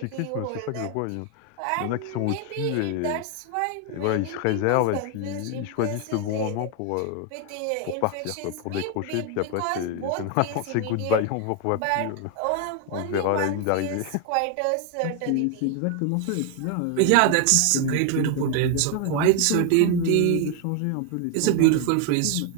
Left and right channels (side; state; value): both; different; correlation 0.01